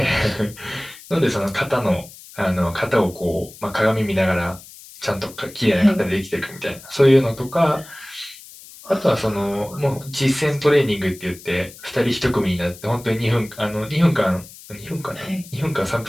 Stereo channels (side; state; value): left; noise; hiss, 19 dB below the sound